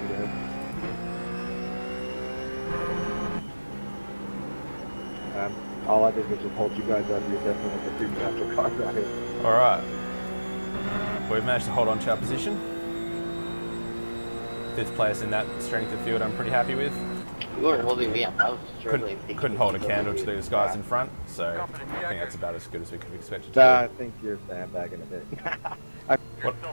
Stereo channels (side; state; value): both; inverted; correlation -1.00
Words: today. All I did was just hold you guys up. You're definitely the two natural cars out here. All right. We've managed to hold on to our position. 5th place in that strength of field I'm pretty happy with. You weren't holding me up. I was struggling. Couldn't hold a candle to these guys in front, so I think that's about as good as we could have expected to I think you're sandbagging a bit. I You're still